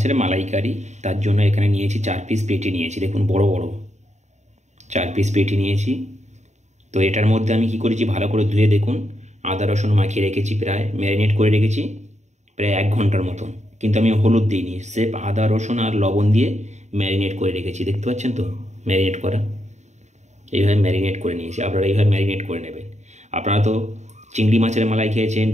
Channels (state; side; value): late; left; 0.34 ms